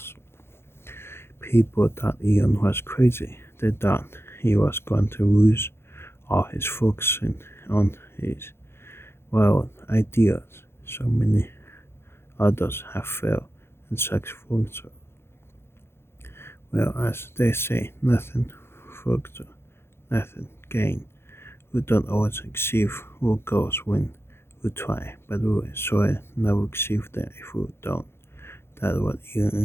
People thought Elon was crazy. They thought he was going to lose all his focus on his wild ideas. So many others have failed in such ventures. Well, as they say, nothing further, nothing gain. We don't always achieve our goals when we try, but we surely never achieve them if we don't. That's what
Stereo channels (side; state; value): right; late; 0.12 ms